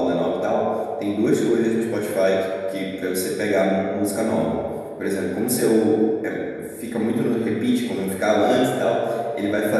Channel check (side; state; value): both; identical; correlation 1.00